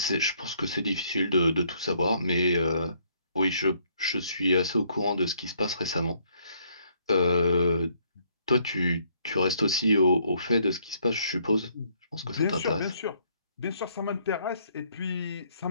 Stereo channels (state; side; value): inverted; both; correlation -0.68